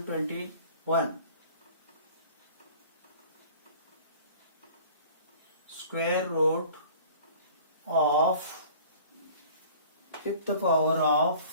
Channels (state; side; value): inverted; both; correlation -0.47